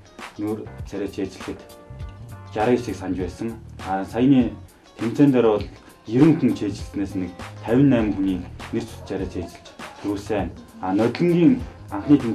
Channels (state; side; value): identical; both; correlation 1.00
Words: нүүр царай цээжлэхэд 69-ийг санаж байсан. Саяны тэмцээн дээр бол 90 хүн цээжилснээс нэг 58 хүний нэр зүс царай цээжилж төрүүлсэн. Нодлонгийн анхны